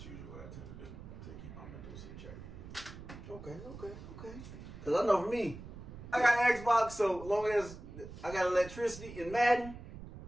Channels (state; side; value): noise; right; rumble, 13 dB below the sound